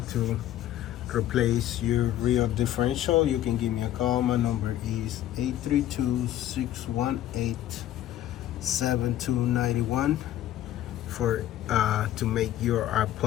to replace your rear differential, you can give me a call. My number is 832-618-7291 for to make your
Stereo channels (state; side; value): quieter; right; 12.8 dB